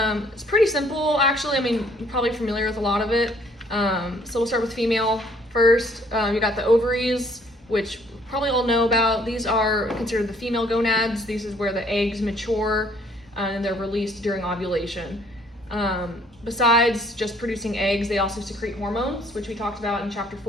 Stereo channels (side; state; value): both; normal; correlation 0.61